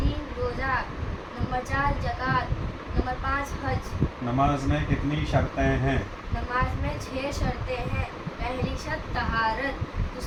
रोज़ा, नंबर 4 ज़कात, नंबर 5 हज। नमाज में कितनी शर्तें हैं? नमाज में 6 शर्तें हैं। पहली शर्त तहारत,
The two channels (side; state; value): both; identical; correlation 1.00